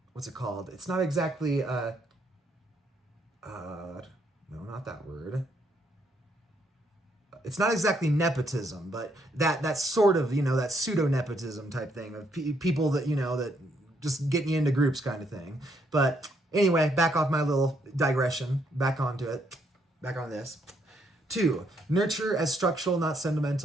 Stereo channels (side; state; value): both; normal; correlation 0.73